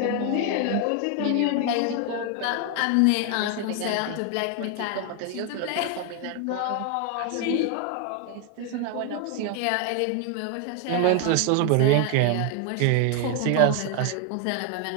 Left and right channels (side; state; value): both; different; correlation 0.00